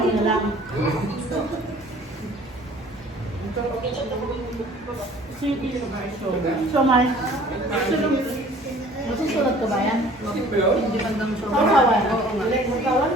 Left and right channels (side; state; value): both; normal; correlation 0.51